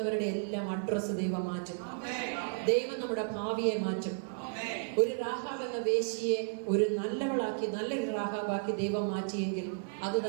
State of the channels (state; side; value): silent; left; digital silence